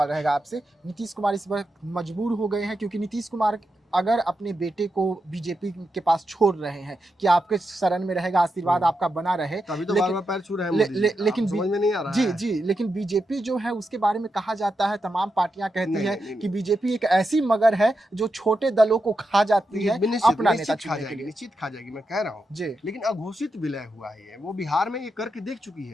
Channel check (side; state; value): both; normal; correlation 0.86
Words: रहेगा आपसे, नीतीश कुमार इस वक्त मजबूर हो गए हैं क्योंकि नीतीश कुमार अगर अपने बेटे को बीजेपी के पास छोड़ रहे हैं कि आपके शरण में रहेगा, आशीर्वाद आपका बना रहे, तभी तो लेकिन- बार-बार पैर छू रहे हैं मोदी जी। लेकिन समझ में नहीं आ रहा जी है। जी, लेकिन बीजेपी जो है उसके बारे में कहा जाता है, तमाम पार्टियां कहती नहीं, है नहीं, नहीं, कि बीजेपी एक ऐसी मगर है जो छोटे दलों को खा जाती है अपना नेता चुनने के लिए। निश्चित खा जाएगी, मैं कह रहा हूँ। जी। लेकिन अघोषित विलय हुआ है, वो बिहार में ये करके देख चुकी